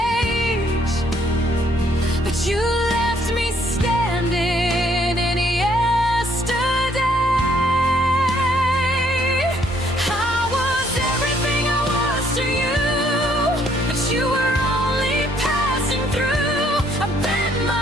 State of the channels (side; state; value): both; normal; correlation 0.67